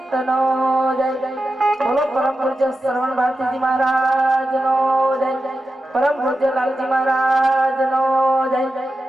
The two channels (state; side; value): normal; both; correlation 0.91